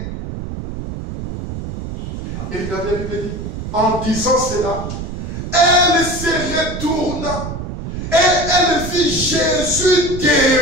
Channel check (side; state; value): right; noise; rumble, 7 dB below the sound